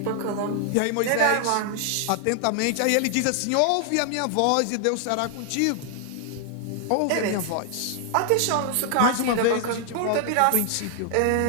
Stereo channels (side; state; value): both; different; correlation 0.00